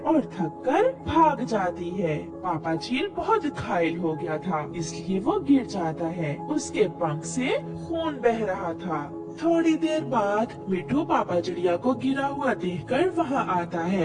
थक कर भाग जाती है। पापा चील बहुत घायल हो गया था, इसलिए वो गिर जाता है। उसके पंख से खून बह रहा था। थोड़ी देर बाद मिठू पापा चिड़िया को गिरा हुआ देखकर वहाँ आता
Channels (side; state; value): both; identical; correlation 1.00